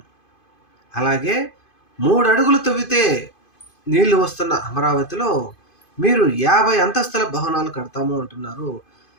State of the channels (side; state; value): right; late; 2.5 ms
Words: అలాగే 3 అడుగులు తవ్వితే నీళ్లు వస్తున్న అమరావతిలో మీరు 50 అంతస్తుల భవనాలు కడతాము అంటున్నారు.